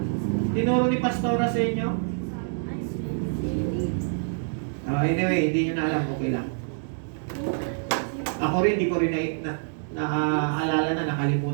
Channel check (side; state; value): left; silent; digital silence